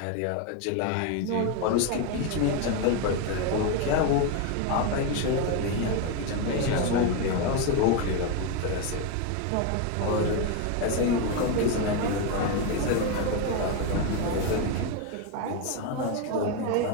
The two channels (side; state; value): both; different; correlation 0.02